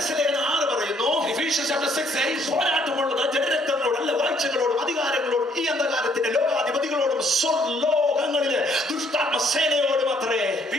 6 പറയുന്നു, Ephesians chapter 6 says, പോരാട്ടമുള്ളത് ജനരക്തങ്ങളോടല്ല, വാഴ്ചകളോടും അധികാരങ്ങളോടും ഈ അന്ധകാരത്തിന്റെ ലോകാധിപതികളോടും സ്വർലോകങ്ങളിലെ ദുഷ്ടാത്മ സേനയോടും അത്രേ. we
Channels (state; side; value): normal; both; correlation 0.66